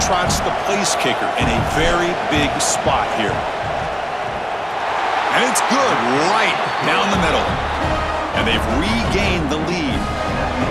trots the place kicker in a very big spot here. And it's good right down the middle. And they've regained the lead.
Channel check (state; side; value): identical; both; correlation 1.00